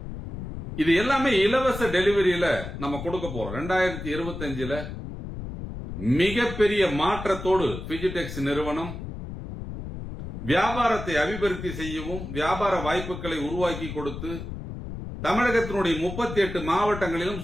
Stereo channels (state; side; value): noise; left; rumble, 8 dB below the sound